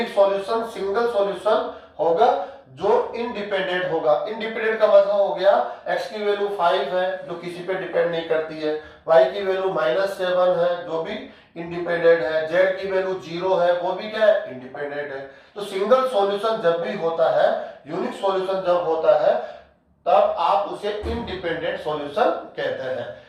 सॉल्यूशन सिंगल सॉल्यूशन होगा जो इंडिपेंडेंट होगा। इंडिपेंडेंट का मतलब हो गया x की वैल्यू 5 है जो किसी पे डिपेंड नहीं करती है, y की वैल्यू -7 है जो भी इंडिपेंडेंट है, z की वैल्यू 0 है वो भी क्या है, इंडिपेंडेंट है। तो सिंगल सॉल्यूशन जब भी होता है, यूनिक सॉल्यूशन जब होता है, तब आप उसे इंडिपेंडेंट सॉल्यूशन कहते हैं।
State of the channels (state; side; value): identical; both; correlation 1.00